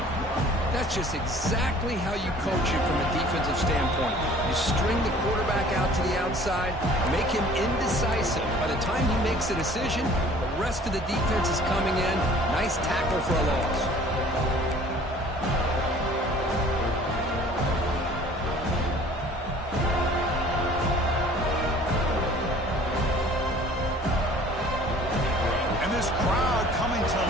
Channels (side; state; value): both; normal; correlation 0.51